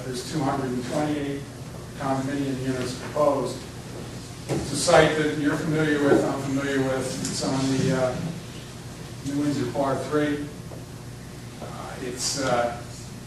there's 228 condominium units proposed. It's a site that you're familiar with, I'm familiar with. It's on the New Windsor Part 3.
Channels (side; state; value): both; identical; correlation 1.00